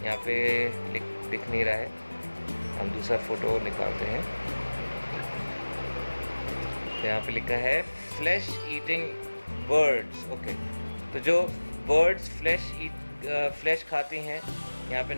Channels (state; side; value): inverted; both; correlation -1.00